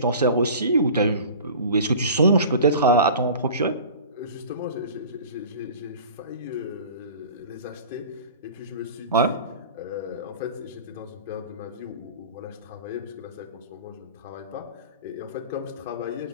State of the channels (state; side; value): inverted; both; correlation -0.40